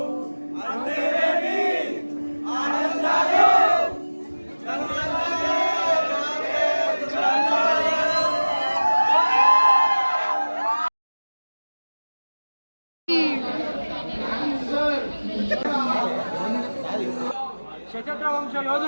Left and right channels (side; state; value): both; inverted; correlation -1.00